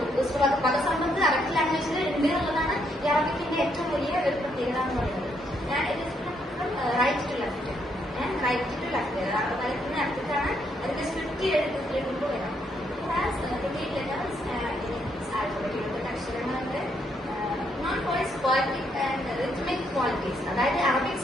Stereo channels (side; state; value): both; normal; correlation 0.74